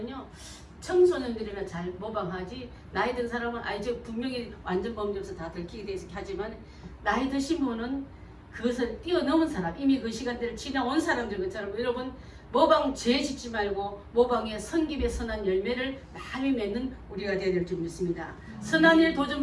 청소년들이나 잘 모방하지 나이 든 사람은 이제 분명히 완전 범죄에서 다 들키게 돼 있게 하지만 나이 드신 분은 그것을 뛰어넘은 사람 이미 그 시간대를 지나온 사람들 것처럼 여러분 모방죄 짓지 말고 모방의 성김의 선한 열매를 많이 맺는 우리가 되어야 될 줄 믿습니다. 선한 일 도전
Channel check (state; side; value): identical; both; correlation 1.00